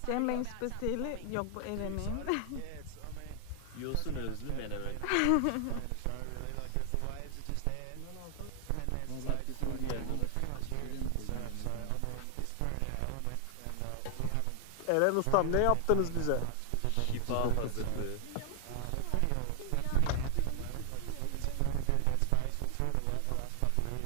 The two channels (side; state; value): both; different; correlation 0.00